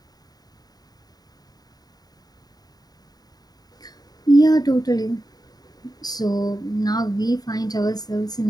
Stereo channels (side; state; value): right; late; 0.19 ms